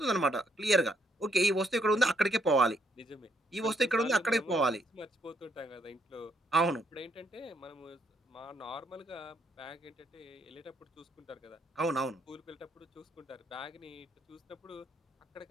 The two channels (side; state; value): both; normal; correlation 0.72